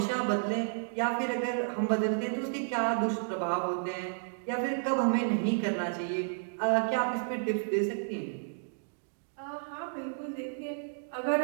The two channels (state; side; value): silent; left; digital silence